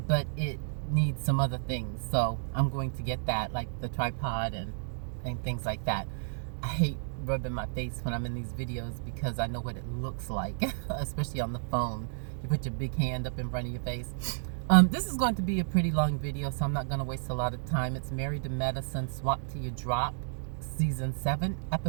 it needs some other things. So I'm going to get that, like the tripod and things like that. I hate rubbing my face when I'm in these videos because I know what it looks like, especially on the phone. You put your big hand up in front of your face. This is going to be a pretty long video, so I'm not going to waste a lot of time. It's Married to Medicine, Swap Till You Drop, Season 7,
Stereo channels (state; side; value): silent; left; digital silence